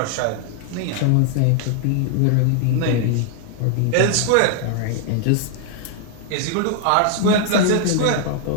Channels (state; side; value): different; both; correlation 0.00